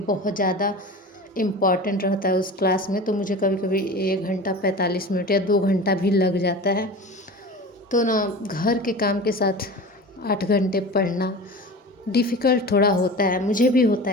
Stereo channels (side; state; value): both; normal; correlation 0.33